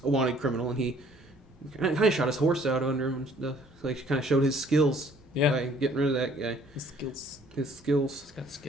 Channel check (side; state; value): both; normal; correlation 0.59